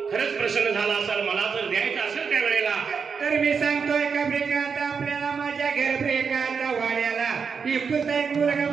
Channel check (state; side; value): quieter; left; 5.9 dB